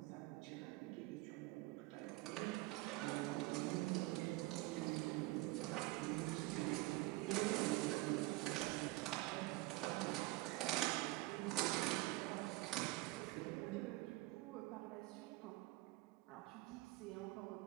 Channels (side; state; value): left; quieter; 20.4 dB